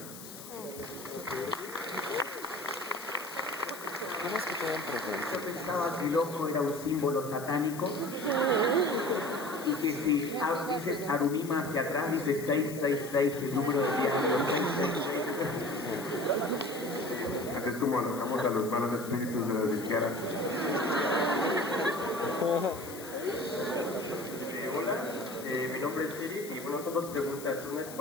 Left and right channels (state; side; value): noise; left; hiss, 14 dB below the sound